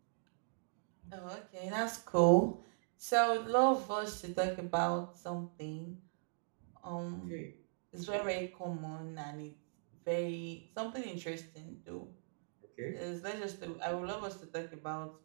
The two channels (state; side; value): silent; left; digital silence